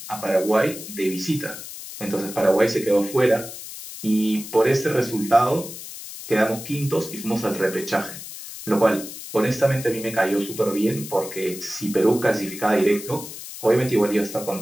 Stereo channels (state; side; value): noise; left; hiss, 12 dB below the sound